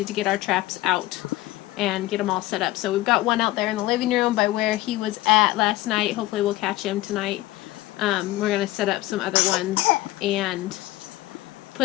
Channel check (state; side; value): quieter; right; 17.5 dB